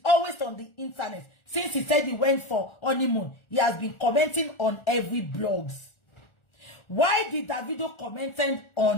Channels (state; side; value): late; right; 1.4 ms